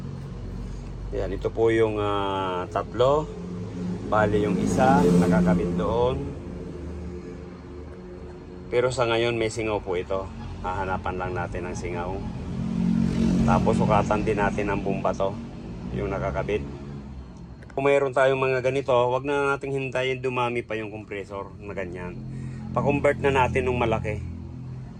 Ayan, ito po yung tatlo. Bali yung isa, nakakabit doon. Pero sa ngayon may singaw po ito. Hahanapan lang natin ang singaw. Tapos sukatan din natin ang bomba to, yung nakakabit. Kung mayroon tayong mga ganito, wag na nating hintayin dumami pa yung compressor na ganyan. Pa-convert na natin ng malaki.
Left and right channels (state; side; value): identical; both; correlation 1.00